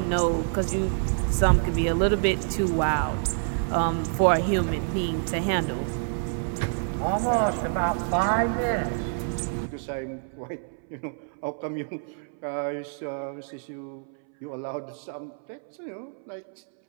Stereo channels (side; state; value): left; silent; 60 dB below the other